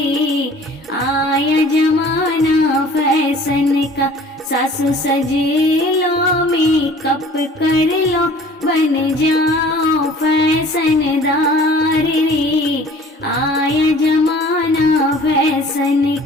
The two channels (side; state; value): both; normal; correlation 0.49